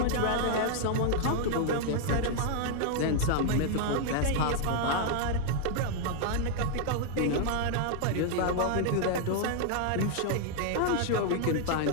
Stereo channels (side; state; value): both; different; correlation 0.00